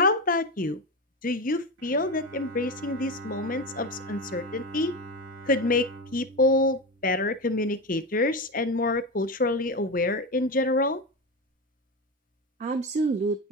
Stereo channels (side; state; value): both; normal; correlation 0.18